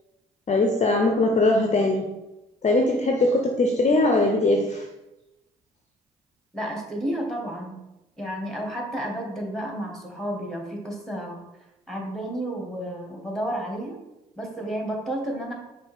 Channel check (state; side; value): normal; both; correlation 0.55